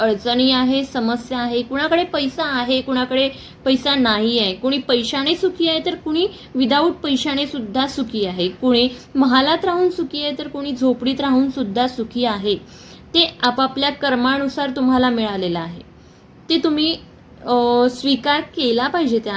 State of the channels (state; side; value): identical; both; correlation 1.00